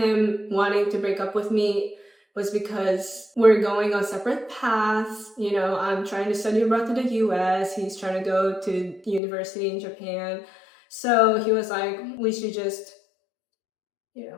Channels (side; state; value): right; drops out; at 9.2 s